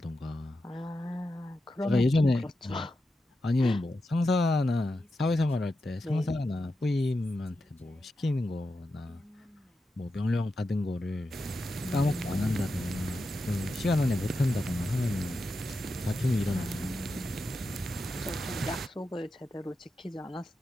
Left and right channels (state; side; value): normal; both; correlation 0.89